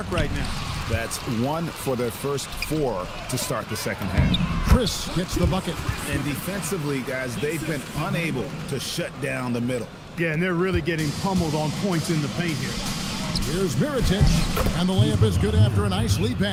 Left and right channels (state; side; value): identical; both; correlation 1.00